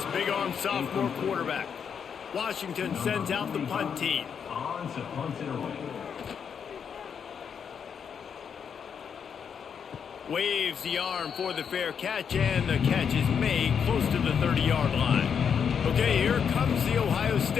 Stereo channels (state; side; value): quieter; right; 7.2 dB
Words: big-arm sophomore quarterback. Washington sends out the punt team. On to punt it away. Waves the arm for the fair catch, and the catch is made close to the 30-yard line. Okay, here comes the Ohio